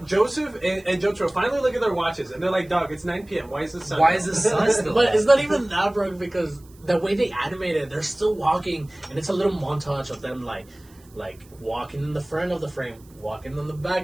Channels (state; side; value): noise; right; hiss, 28 dB below the sound